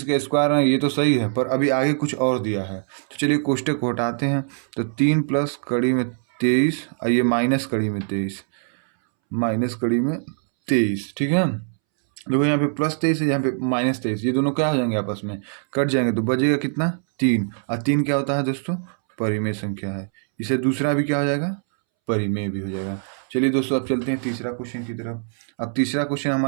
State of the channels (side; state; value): left; silent; 64 dB below the other